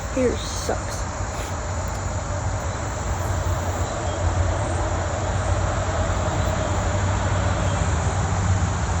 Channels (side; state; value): both; identical; correlation 1.00